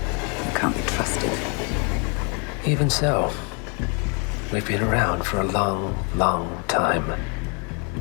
can't be trusted. Even so, we've been around for a long, long time.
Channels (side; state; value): right; quieter; 35.7 dB